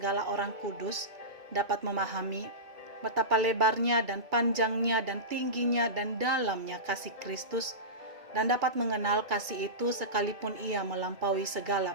orang kudus dapat memahami betapa lebarnya dan panjangnya dan tingginya dan dalamnya kasih Kristus, dan dapat mengenal kasih itu sekalipun ia melampaui segala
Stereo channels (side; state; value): left; late; 2.3 ms